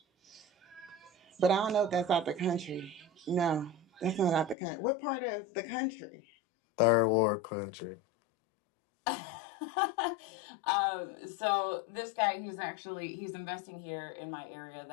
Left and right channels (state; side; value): drops out; right; at 4.5 s